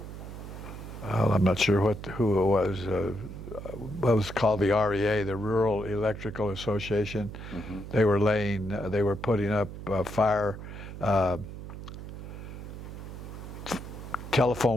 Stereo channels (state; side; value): noise; right; hum, 10 dB below the sound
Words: Well, I'm not sure who it was. What was called the REA, the Rural Electrical Association. Mm-hmm. They were putting up fire